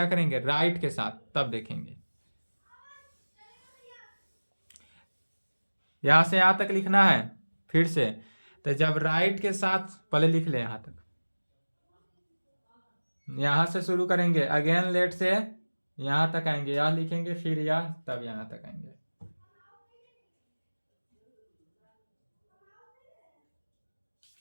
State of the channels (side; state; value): both; inverted; correlation -1.00